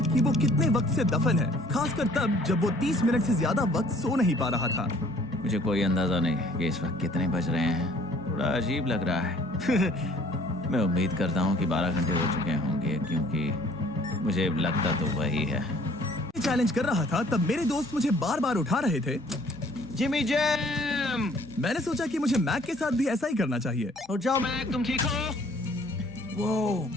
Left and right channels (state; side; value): normal; both; correlation 0.57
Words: कि वो कितने वक्त से दफन है, खासकर तब जब वो 30 मिनट से ज्यादा वक्त सो नहीं पा रहा था। मुझे कोई अंदाजा नहीं कि इस वक्त कितने बज रहे हैं। थोड़ा अजीब लग रहा है। मैं उम्मीद करता हूँ कि 12 घंटे हो चुके होंगे, क्योंकि मुझे लगता तो वही है। चैलेंज कर रहा था तब मेरे दोस्त मुझे बार बार उठा रहे थे। Jimmy jam. मैंने सोचा कि मुझे मैक के साथ भी ऐसा ही करना चाहिए। उठ जाओ। मैक तुम ठीक हो? वो